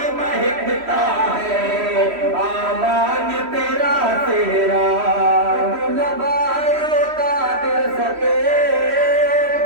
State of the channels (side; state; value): left; late; 3.1 ms